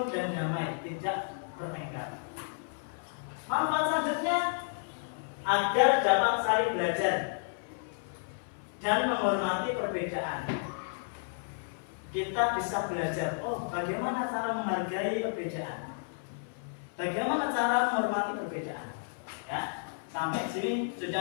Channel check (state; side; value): silent; right; 56 dB below the other